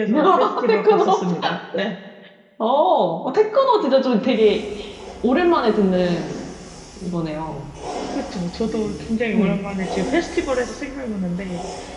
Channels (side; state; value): both; identical; correlation 1.00